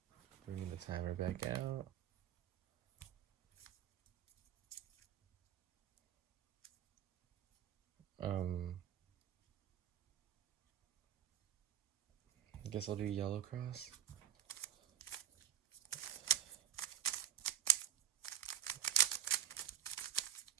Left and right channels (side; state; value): left; quieter; 11.1 dB